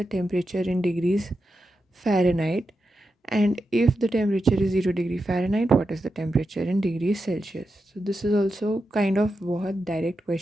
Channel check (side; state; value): both; normal; correlation 0.88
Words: temperature in degrees Fahrenheit, and if the temperature is 0 degree Fahrenheit, what is the temperature in degrees Celsius? So this is also kind of बहुत direct